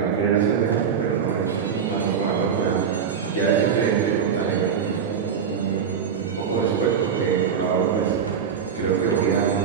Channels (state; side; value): quieter; left; 7.1 dB